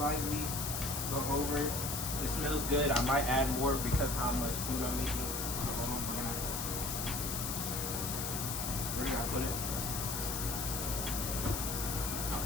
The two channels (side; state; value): left; noise; hiss, 3 dB below the sound